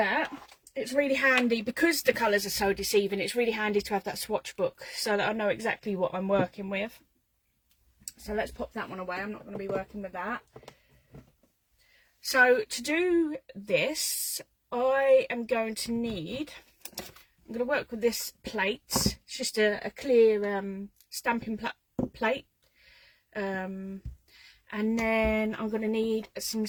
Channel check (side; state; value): both; identical; correlation 1.00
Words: It's really handy because the colours are so deceiving. It's really handy to have that swatch book so that I know exactly what I'm working with. So let's pop that one away. I'm not going to be working with that. So to do this, I am going to need, I'm going to work with this plate. It's just a clear stamping plate. And then I'm going to need some